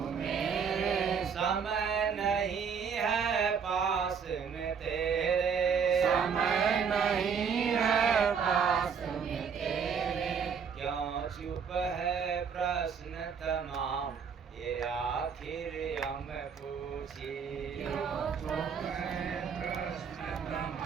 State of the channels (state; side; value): quieter; left; 6.5 dB